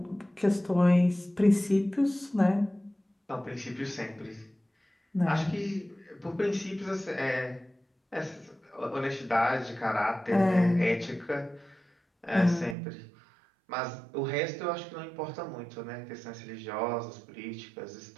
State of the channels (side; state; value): left; drops out; at 12.8 s